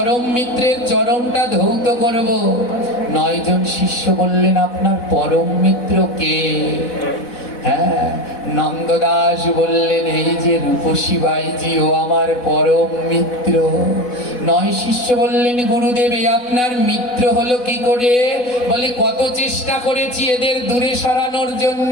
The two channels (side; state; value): right; late; 4.1 ms